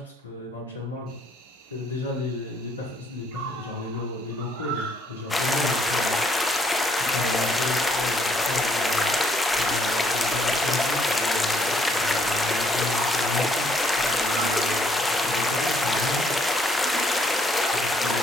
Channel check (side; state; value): both; normal; correlation 0.68